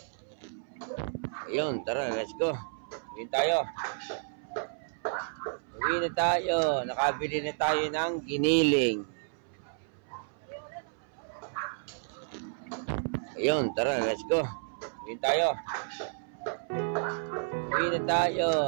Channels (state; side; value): silent; left; 57 dB below the other